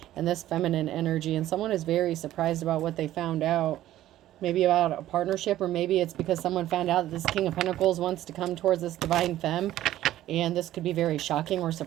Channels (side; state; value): left; quieter; 13.7 dB